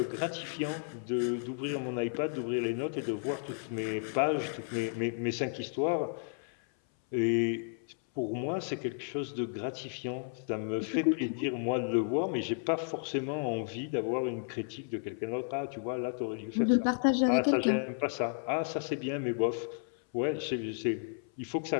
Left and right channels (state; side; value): silent; right; 56 dB below the other